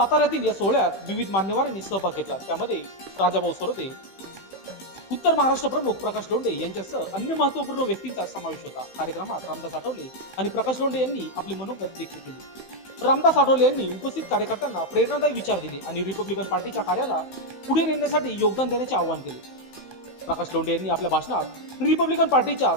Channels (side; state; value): right; late; 15 ms